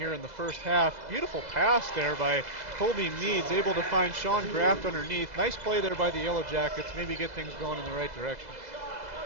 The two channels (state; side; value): late; left; 2.0 ms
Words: in the first half. Beautiful pass there by Colby Meads, able to find Sean Graft underneath. Nice play there by the Yellow Jackets, maybe get things going in the right direction.